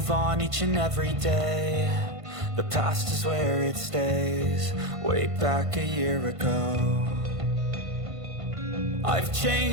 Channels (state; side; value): late; left; 1.5 ms